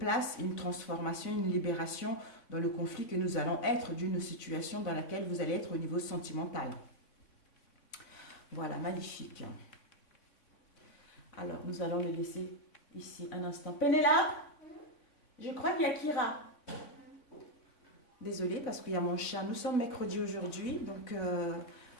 une transformation, une libération dans le conflit que nous allons être d'une situation dans laquelle vous allez être au niveau sentimental. Voilà, magnifique. Alors, nous allons le laisser ici un instant. Pénélope, je crois qu'il y a Kira. Désolée parce qu'il y a mon chat. Nous sommes mercredi aujourd'hui, donc il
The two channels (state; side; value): late; right; 3.5 ms